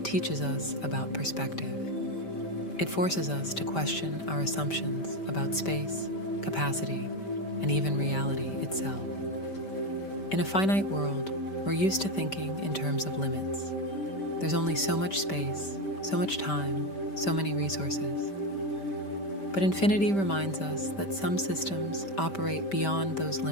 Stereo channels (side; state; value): right; late; 5.1 ms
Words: teaches us about perspective. It forces us to question our assumptions about space, capacity, and even reality itself. In a finite world, we're used to thinking in terms of limits. There's only so much space, so much time, so many resources. But infinity reminds us that some systems operate beyond those